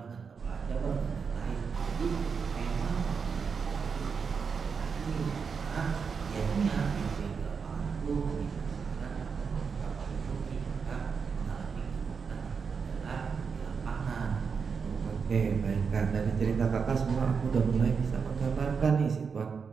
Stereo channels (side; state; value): left; quieter; 5.8 dB